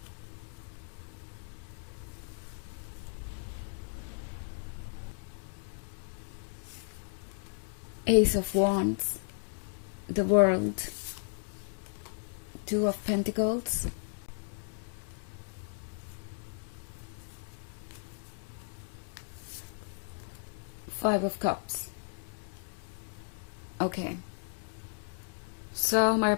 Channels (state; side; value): silent; right; digital silence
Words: Ace of Wands, the World, Two of Pentacles, Five of Cups. Okay. So हमारे